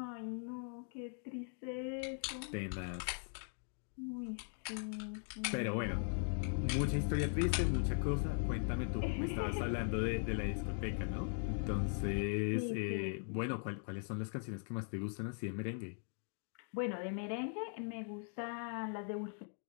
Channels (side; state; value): right; silent; 51 dB below the other